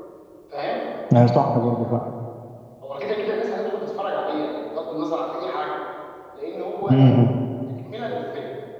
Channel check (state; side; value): identical; both; correlation 1.00